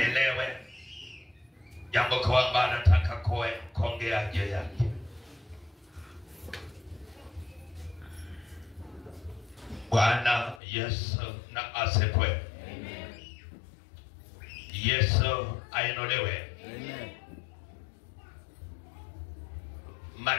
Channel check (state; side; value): drops out; right; at 10.6 s